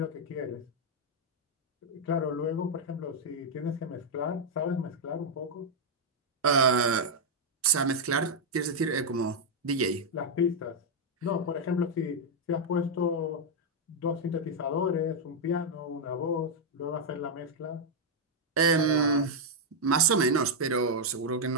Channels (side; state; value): both; normal; correlation -0.01